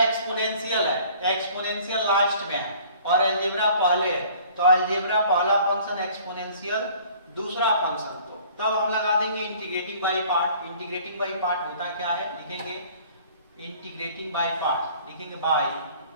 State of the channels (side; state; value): both; inverted; correlation -0.52